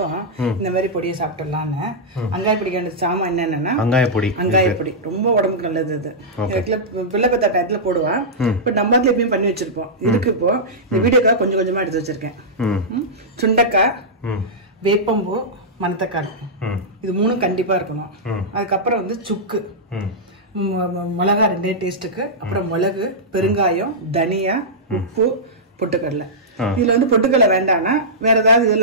இந்த மாதிரி பொடியை சாப்பிட்டுடலான்னு. அங்காய பொடிக்கான சாமான் என்னன்னா அங்காய பொடி ரொம்ப உடம்புக்கு நல்லது. இது பிள்ளை பத்தா டயத்துல போடுவான். இப்ப நம்ம அதுல எப்பயும் பண்ணி வச்சிருப்போம். இதுக்கு இப்போ இந்த வீடியோக்காக கொஞ்சம் கொஞ்சமா எடுத்து வச்சிருக்கேன். சுண்டக்காய், வேப்பம்பூ, மணத்தக்காளி, இது 3 கண்டிப்பா இருக்கணும். அதுக்கப்புறம் வந்து சுக்கு, மிளகா 2 டேஸ்ட்டுக்கு, அப்புறம் மிளகு, பெருங்காயம், தனியா, உப்பு, பொட்டுக்கடலை. இதுல வந்து பொட்டுக்கடலை வேண்டாம்னா வேற ஏதாவது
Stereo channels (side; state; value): both; normal; correlation -0.12